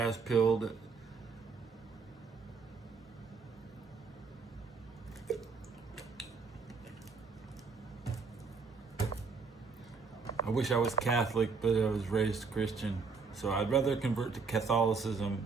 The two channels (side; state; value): left; quieter; 4.8 dB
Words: pilled. I wish I was Catholic, but I was raised Christian. So I'd rather convert to Catholicism,